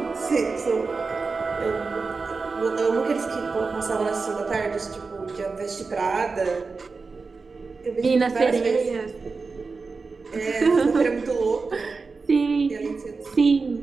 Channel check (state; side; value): quieter; left; 4.3 dB